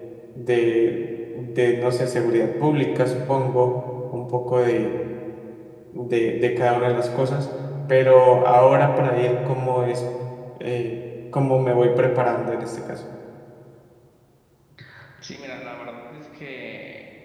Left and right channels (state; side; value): identical; both; correlation 1.00